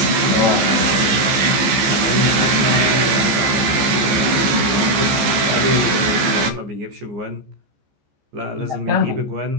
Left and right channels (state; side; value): late; left; 14 ms